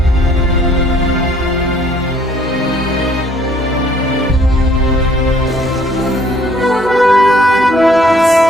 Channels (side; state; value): both; normal; correlation 0.61